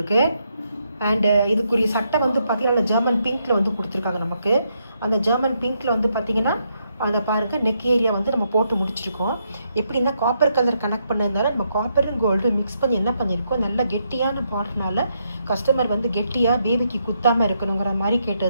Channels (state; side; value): inverted; both; correlation -0.78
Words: அண்ட் இதுக்குரிய சட்டை வந்து பாத்தீங்கன்னா ஜெர்மன் பிங்க்ல வந்து கொடுத்துருக்காங்க நமக்கு. அந்த ஜெர்மன் பிங்க்ல வந்து பாத்தீங்கன்னா அதை பாருங்க நெக் ஏரியா வந்து நம்ம போட்டு முடிச்சிருக்கோம். எப்படின்னா காப்பர் கலர் கனெக்ட் பண்ணதுனால நம்ம காப்பரும் கோல்டு மிக்ஸ் பண்ணி என்ன பண்ணியிருக்கோம், நல்ல கெட்டியான பார்டர்னால கஸ்டமர் வந்து கெட்டியா பேபிக்கு குத்தாம இருக்கணுங்கிற மாதிரி